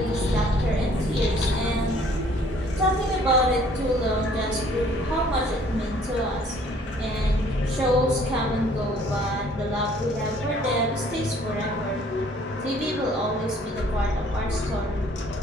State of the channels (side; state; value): both; normal; correlation 0.58